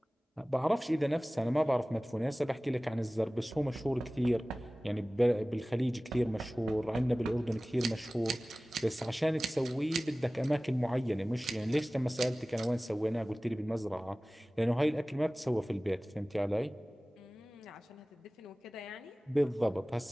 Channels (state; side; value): normal; both; correlation 0.98